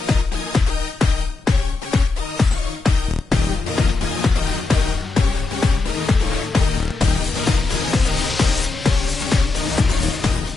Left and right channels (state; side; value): quieter; right; 3.5 dB